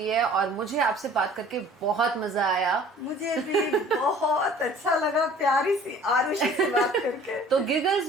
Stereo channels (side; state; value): both; normal; correlation 0.50